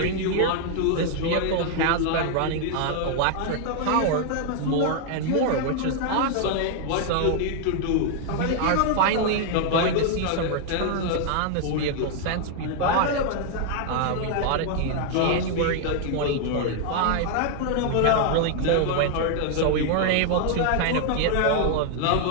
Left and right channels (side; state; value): both; different; correlation 0.00